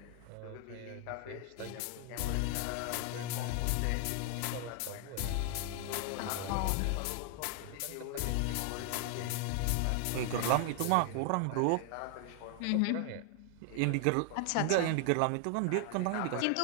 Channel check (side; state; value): both; different; correlation 0.00